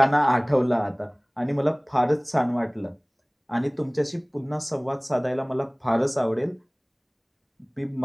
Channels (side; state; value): both; identical; correlation 1.00